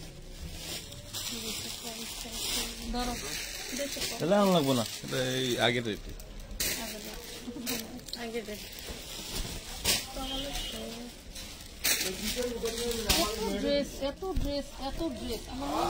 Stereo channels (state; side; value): identical; both; correlation 1.00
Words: ধরো তাহলে আন লাগবো না, এটা এই আগের রেটে। এত ড্রেস আমার মনে